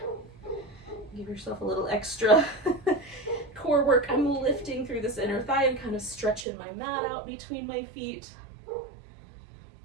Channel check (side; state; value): left; drops out; at 6.5 s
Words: Give yourself a little extra core work. I'm lifting through this inner thigh and kind of stretching my mat out between my feet.